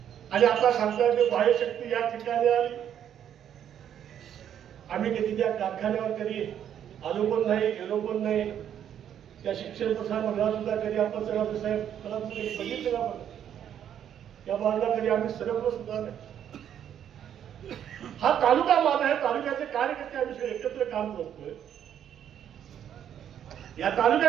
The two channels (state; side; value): quieter; left; 9.6 dB